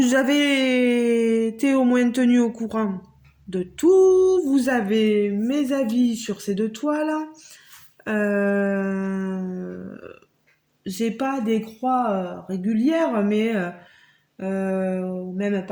avez été au moins tenu au courant de tout. Vous avez mes avis sur ces deux toiles. Euh, j'ai pas des croix régulières, mais même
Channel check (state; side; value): identical; both; correlation 1.00